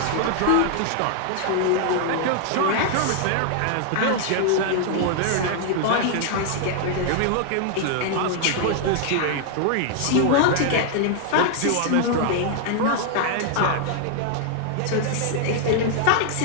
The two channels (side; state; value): both; different; correlation 0.00